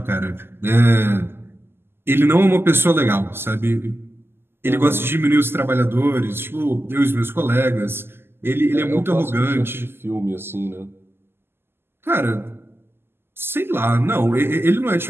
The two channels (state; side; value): late; left; 0.11 ms